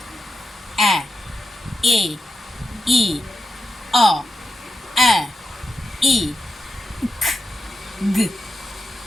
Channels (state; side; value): normal; both; correlation 0.88